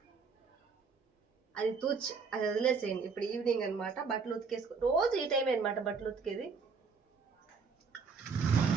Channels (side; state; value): left; quieter; 5.2 dB